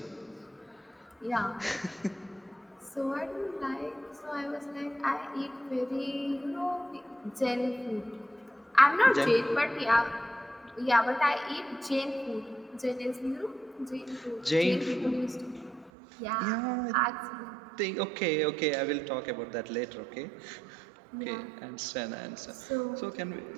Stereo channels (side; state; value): left; drops out; at 15.9 s